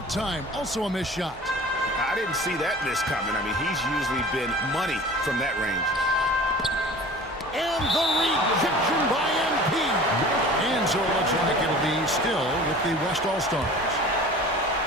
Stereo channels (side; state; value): both; normal; correlation 0.42